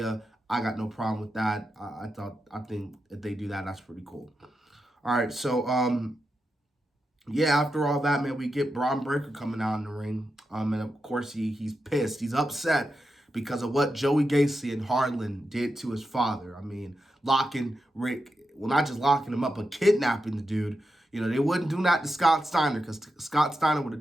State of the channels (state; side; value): normal; both; correlation 0.88